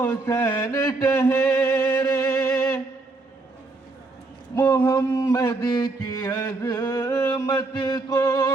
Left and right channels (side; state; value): left; quieter; 3.4 dB